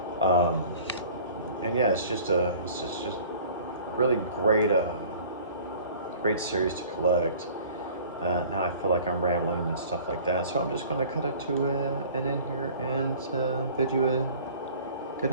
And yeah, it's just really great, great series to collect. Now I feel like I'm rambling and stuff like that, so I'm just going to cut it to an end here and bid you a good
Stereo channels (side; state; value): both; inverted; correlation -0.47